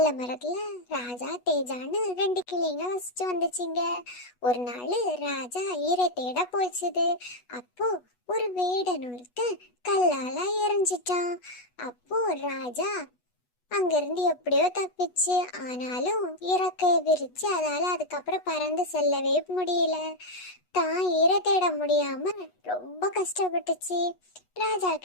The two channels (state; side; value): late; right; 8.2 ms